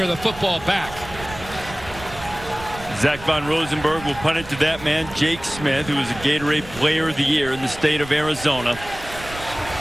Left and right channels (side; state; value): right; noise; rumble, 14 dB below the sound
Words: the football back. Zach Von Rosenberg will punt it to that man, Jake Smith, who was a Gatorade Player of the Year in the state of Arizona.